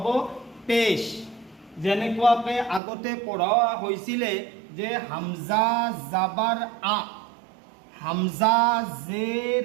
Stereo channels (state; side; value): drops out; left; at 2.8 s